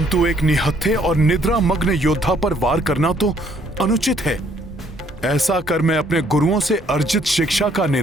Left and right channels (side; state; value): both; normal; correlation 0.65